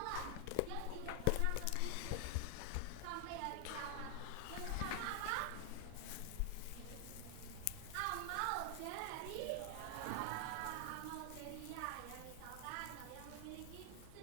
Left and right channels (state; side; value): different; both; correlation 0.00